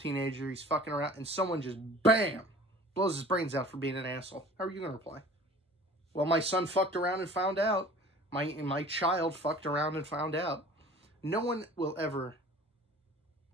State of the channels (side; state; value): both; normal; correlation 0.45